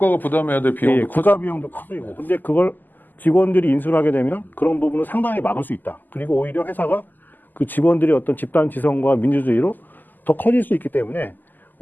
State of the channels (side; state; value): right; late; 0.087 ms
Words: 부담해야 될 비용도 예, 국가 비용도 커지고. 근데 그걸 직원들이 인수를 하게 되면 그런 부분을 상당히 막을 수 있다. 그리고 오히려 회사가 그 직원들의 어떤 집단 지성과 민주주의로 더 커질 수 있기 때문에